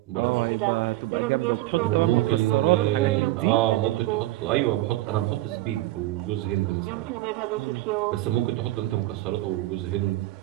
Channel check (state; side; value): quieter; left; 16.8 dB